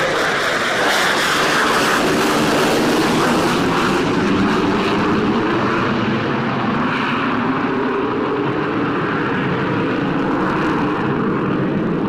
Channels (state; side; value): identical; both; correlation 1.00